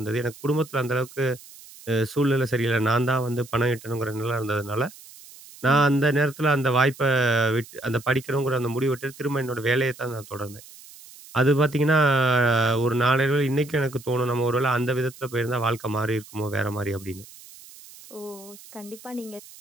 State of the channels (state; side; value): noise; right; hiss, 20 dB below the sound